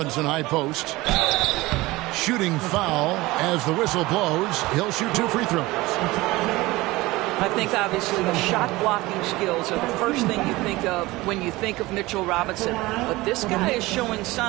high post. Shooting foul as the whistle blows. He'll shoot 2 free throws. I think obviously the shot blocking skills are the first thing you think of when you think of Mitchell Robinson. But this guy is showing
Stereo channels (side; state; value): left; quieter; 20.1 dB